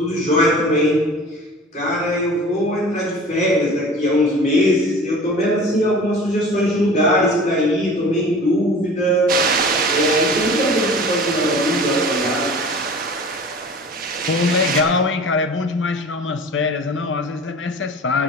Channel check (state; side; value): normal; both; correlation 0.41